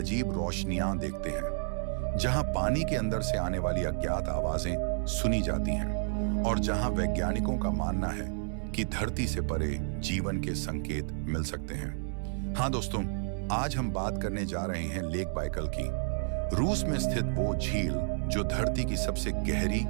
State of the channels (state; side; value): silent; left; 57 dB below the other